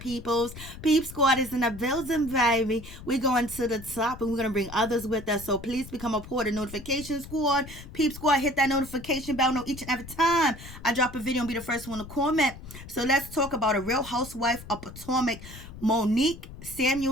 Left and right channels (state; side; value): noise; left; rumble, 14 dB below the sound